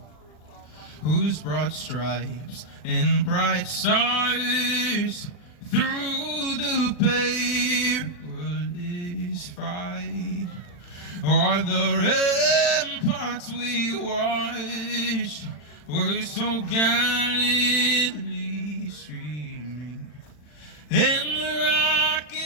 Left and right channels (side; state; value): right; late; 40 ms